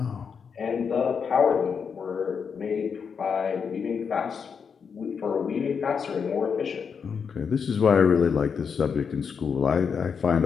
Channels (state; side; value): quieter; right; 6.3 dB